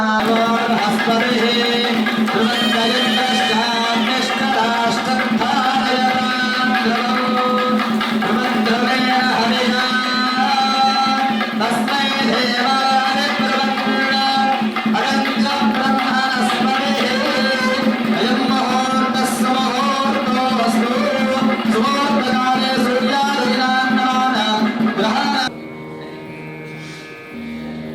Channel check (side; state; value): both; identical; correlation 1.00